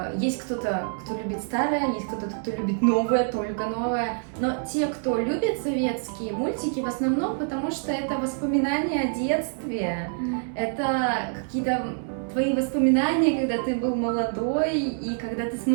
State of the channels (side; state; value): left; silent; 61 dB below the other